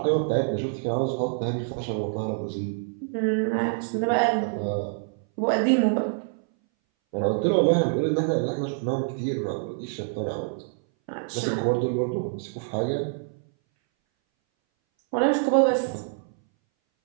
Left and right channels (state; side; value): silent; left; 60 dB below the other